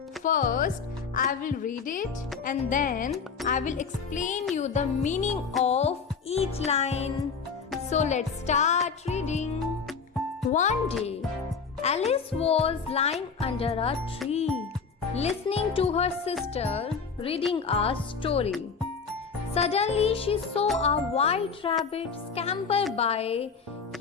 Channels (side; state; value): right; quieter; 5.6 dB